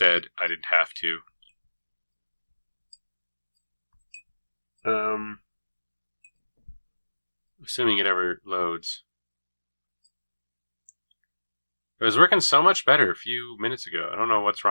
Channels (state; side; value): inverted; both; correlation -1.00